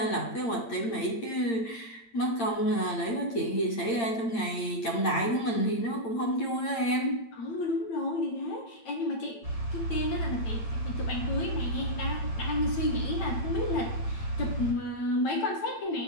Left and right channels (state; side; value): late; right; 8.8 ms